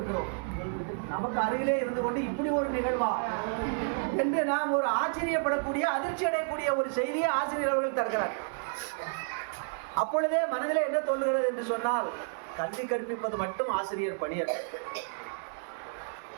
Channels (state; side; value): silent; left; digital silence